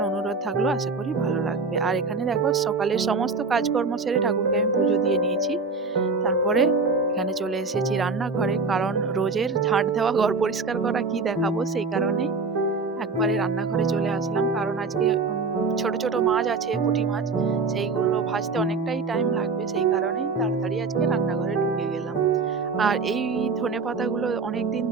অনুরোধ থাকলো। আশা করি ভালো লাগবে। আর এখানে দেখো সকালের সমস্ত কাজকর্ম সেরে ঠাকুরকে আমি পুজো দিয়ে নিয়েছি। তারপরে এখানে চলে এসেছি রান্নাঘরে, কারণ রোজের ঝাঁট দেওয়া, ঘর পরিষ্কার করা কি দেখাবো, সেই কারণেই একবারে রান্নাঘরে চলে আসলাম। কারণ আজকে ছোট ছোট মাছ আছে, পুঁটি মাছ, সেইগুলো ভাজতে অনেকটাই টাইম লাগবে, সেই কারণেই তাড়াতাড়ি আজকে রান্নাঘরে ঢুকে গেলাম। আর এই ধনেপাতাগুলো অনেকদিন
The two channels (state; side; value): quieter; left; 4.3 dB